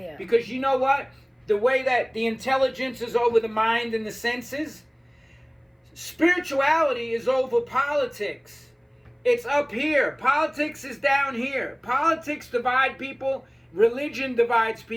Because you know what? The way that the intelligence is over the mind and the senses, spirituality is over politics. It's up here. Politics is down here. Politics divide people. Religion divides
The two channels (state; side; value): identical; both; correlation 1.00